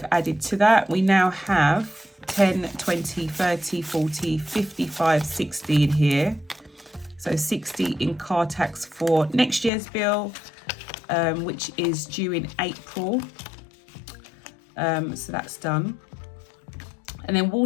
added to that. We now have 10, 20, 30, 40, 55, 60 in here. So 60 in car tax for next year's bill, which is due in April. So that's done. And then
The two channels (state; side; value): drops out; right; at 9.7 s